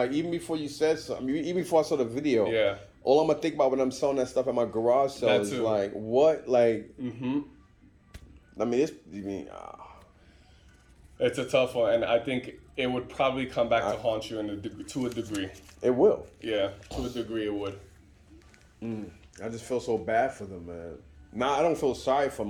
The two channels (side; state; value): both; identical; correlation 1.00